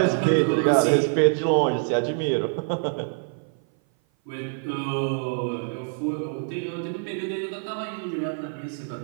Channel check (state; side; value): silent; left; 57 dB below the other